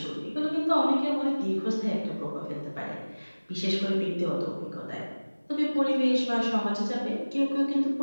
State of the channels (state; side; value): inverted; both; correlation -1.00